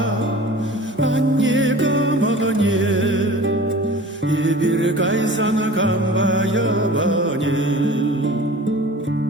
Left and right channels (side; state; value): both; normal; correlation 0.41